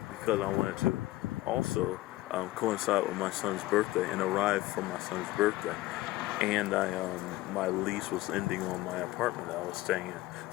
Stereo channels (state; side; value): quieter; right; 17.8 dB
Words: because I wanted to also coincide with my son's birthday and arrive for my son's birthday. And my lease was ending on my apartment that I was staying in.